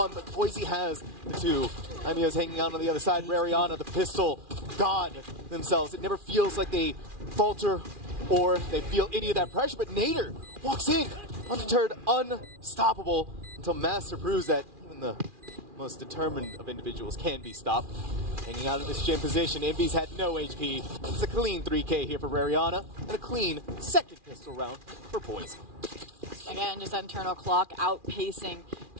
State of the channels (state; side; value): late; left; 2.4 ms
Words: but Boise has the 2. Daimyo's hanging out on the other side. Rariana, the pistol, god themselves. It never feels like they falter or they feel any of that pressure, but Nader walks in, undeterred, unstoppable, until Master proves that even the most determined of individuals can be stopped. Hanging out in this gym position, Envy's had no HP. It's a clean 3K here for Rariana, and a clean second pistol round for Boise. Again, just that internal clock outpacing